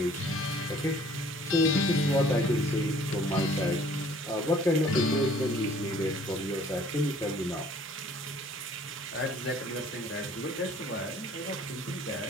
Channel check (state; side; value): normal; both; correlation 0.55